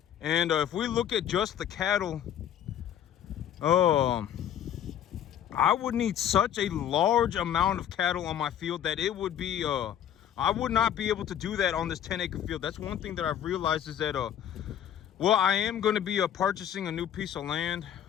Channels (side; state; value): right; quieter; 10.1 dB